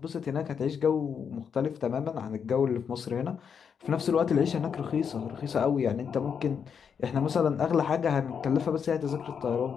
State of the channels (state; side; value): quieter; right; 7.0 dB